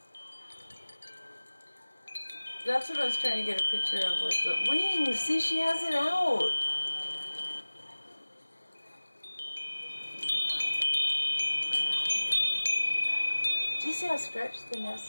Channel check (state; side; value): inverted; both; correlation -1.00